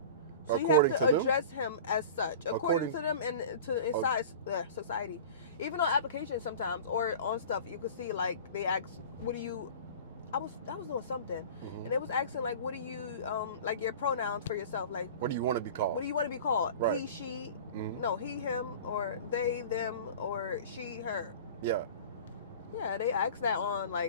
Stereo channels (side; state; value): both; inverted; correlation -0.39